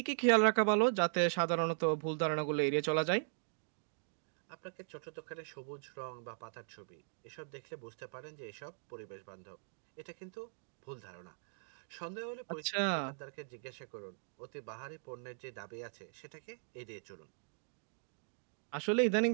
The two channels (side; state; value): left; silent; digital silence